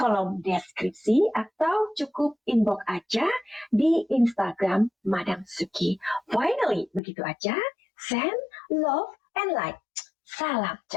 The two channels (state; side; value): drops out; right; at 7.0 s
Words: deskripsi atau cukup inbox aja di Instagram Madam Suki. Finally, begitu aja. Send love and light. Salam